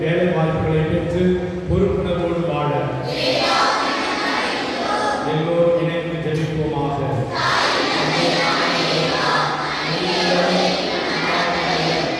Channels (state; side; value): identical; both; correlation 1.00